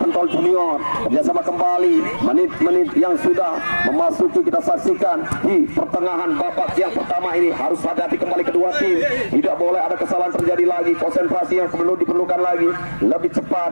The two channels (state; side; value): inverted; both; correlation -1.00